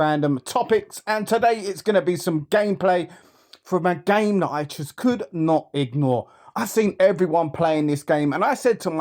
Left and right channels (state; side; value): identical; both; correlation 1.00